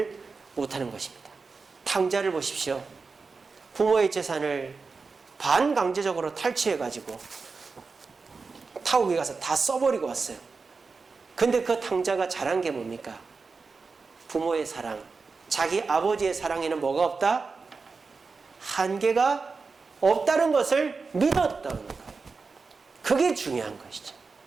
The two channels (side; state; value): left; quieter; 4.5 dB